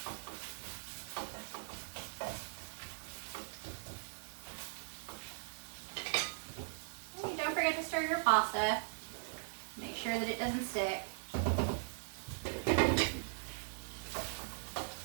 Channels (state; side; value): silent; left; digital silence